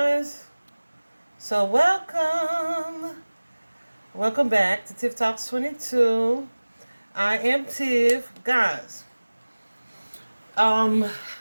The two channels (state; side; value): inverted; both; correlation -1.00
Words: so welcome back to Tiff Talks 22. I am Tiff, guys. Um,